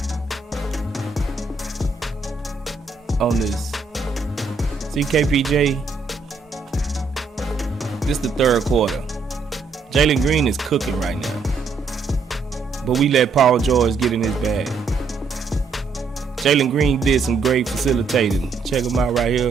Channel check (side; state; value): left; quieter; 4.5 dB